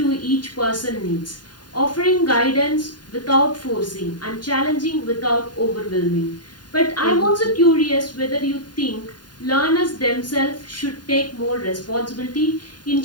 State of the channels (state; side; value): late; right; 0.70 ms